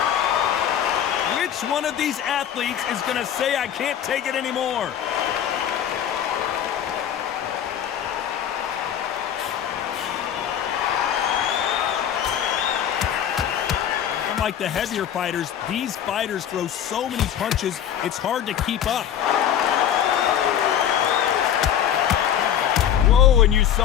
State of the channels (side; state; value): right; quieter; 9.7 dB